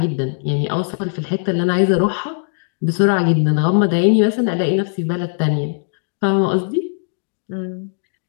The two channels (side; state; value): right; silent; 67 dB below the other